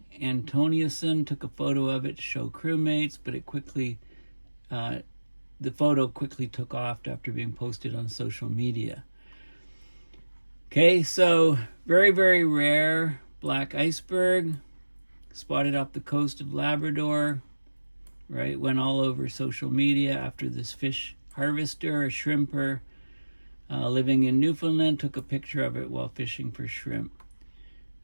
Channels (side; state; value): both; inverted; correlation -1.00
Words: Antoniusson took a photo of it to show crewmates, but the photo quickly took off after being posted on social media. Okay, so very, very rare black iceberg spotted off the coast of Labrador, right? Went all over social media after this fish harvester, a shrimper living in Newfoundland, took a picture of it while fishing for shrimp.